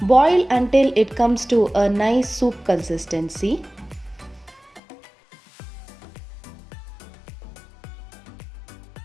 Boil until it comes to a nice soup consistency.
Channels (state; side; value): drops out; right; at 4.8 s